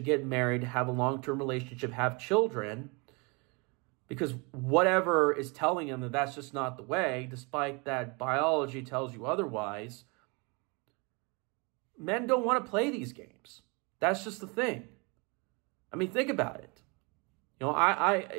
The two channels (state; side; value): quieter; left; 30.2 dB